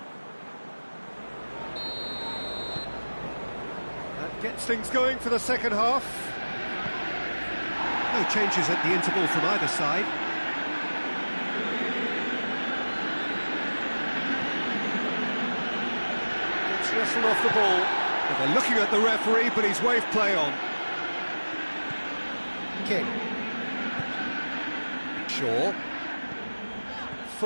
Gets things going for the second half. No changes at the interval from either side. Gets wrestled off the ball. Well, they're looking at the referee, but he's waved play on. King. Shaw.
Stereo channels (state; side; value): inverted; both; correlation -1.00